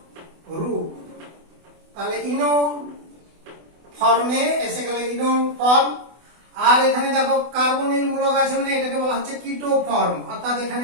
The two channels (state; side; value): late; left; 24 ms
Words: রূপ। তাহলে ইনো ফর্মে এসে গেল ইনল ফর্ম। আর এখানে দেখো কার্বনিল মূলক আছে মানে এটাকে বলা হচ্ছে কিটো ফর্ম, অর্থাৎ